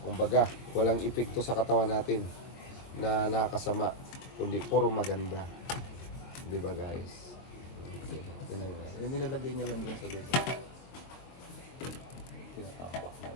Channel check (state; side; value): late; right; 23 ms